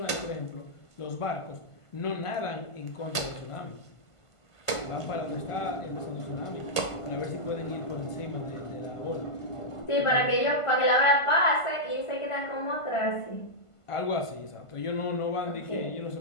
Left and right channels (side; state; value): right; late; 1.5 ms